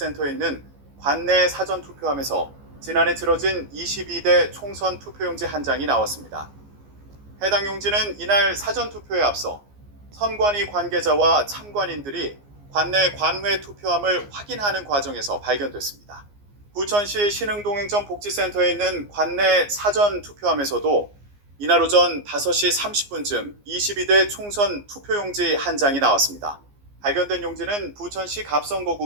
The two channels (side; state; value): left; late; 14 ms